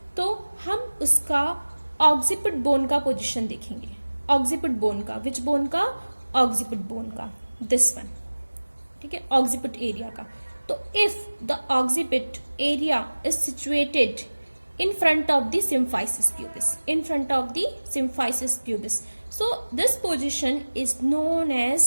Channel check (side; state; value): both; inverted; correlation -1.00